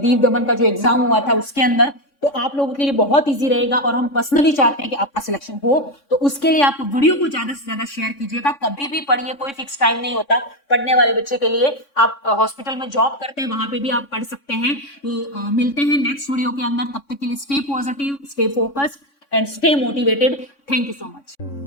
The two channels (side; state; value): right; late; 3.6 ms